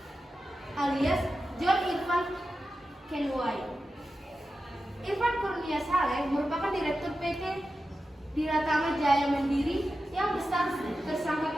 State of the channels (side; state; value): both; normal; correlation 0.92